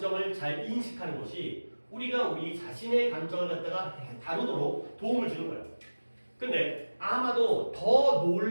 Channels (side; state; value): both; inverted; correlation -1.00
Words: 잘 인식하는 것이 우리가 우리 자신의 감정을 갖다가 다루도록 도움을 주는 거예요. 근데 아마도 더